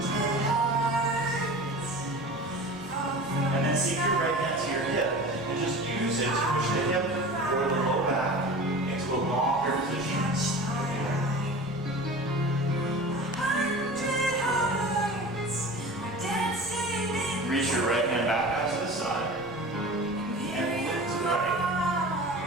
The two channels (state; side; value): normal; both; correlation 0.36